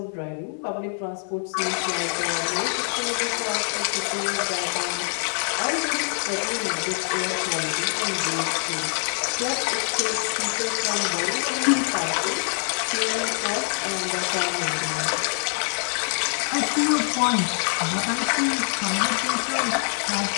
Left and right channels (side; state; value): right; silent; 62 dB below the other